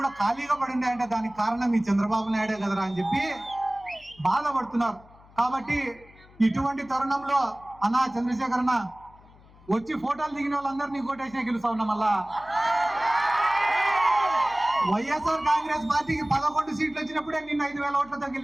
ఖాళీగా పడి ఉన్నాయంటే దానికి కారణం ఈ చంద్రబాబు నాయుడే కదరా అని చెప్పి బాధపడుతున్నారు. కాబట్టి ఇటువంటి తరుణంలో అన్నా చంద్రశేఖర్ అన్న వచ్చి ఫోటోలు దిగిన వాళ్ళందరినీ కోటేసినా గెలుస్తా ఉన్నా. మళ్ళా వైఎస్ఆర్ కాంగ్రెస్ పార్టీకి 11 సీట్లు వచ్చినప్పుడే నిన్న 5,000 ఓట్లతో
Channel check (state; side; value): noise; left; hum, 25 dB below the sound